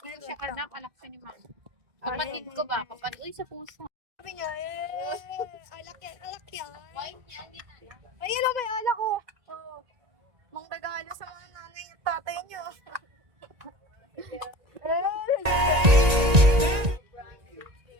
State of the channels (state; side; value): late; left; 1.8 ms